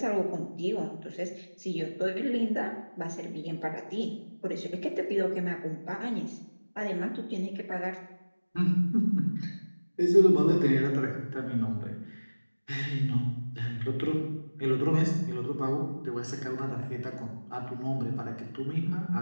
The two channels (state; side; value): inverted; both; correlation -1.00